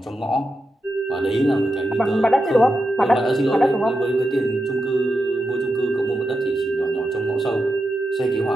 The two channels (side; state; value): both; normal; correlation 0.87